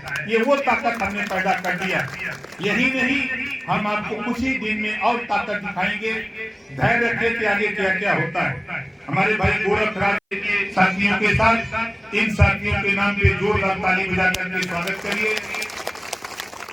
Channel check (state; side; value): identical; both; correlation 1.00